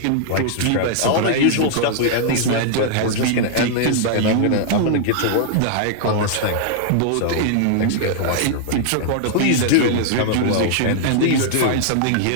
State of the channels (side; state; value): both; different; correlation -0.01